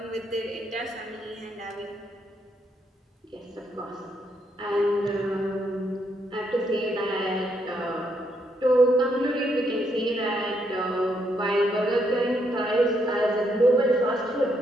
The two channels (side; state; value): both; normal; correlation 0.76